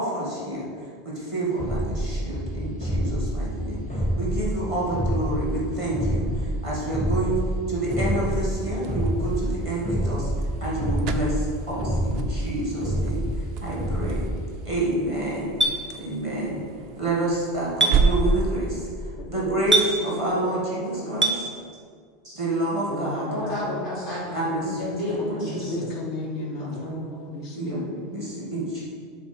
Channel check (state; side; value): normal; both; correlation 0.39